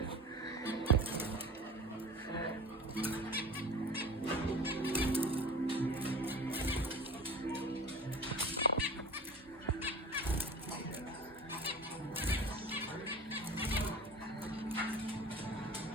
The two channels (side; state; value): both; normal; correlation 0.37